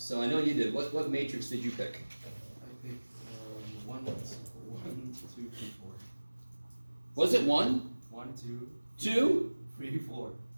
I know you did. What matrix did you pick? I picked 1, 2, 3, 4. Was it 1? 1, 2, 2? 3, 4.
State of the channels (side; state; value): both; inverted; correlation -1.00